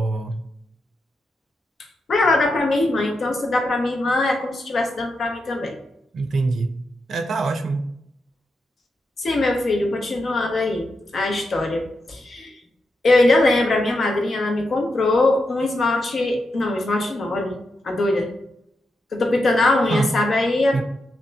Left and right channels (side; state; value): both; normal; correlation 0.86